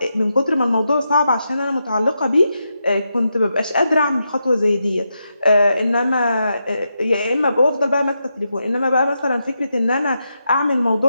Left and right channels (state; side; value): inverted; both; correlation -0.85